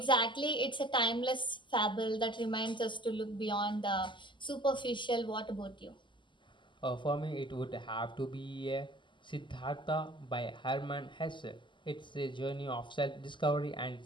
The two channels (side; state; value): right; late; 0.24 ms